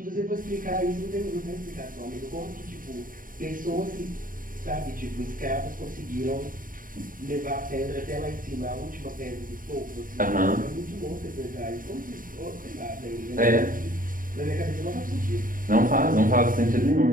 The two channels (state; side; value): late; left; 0.40 ms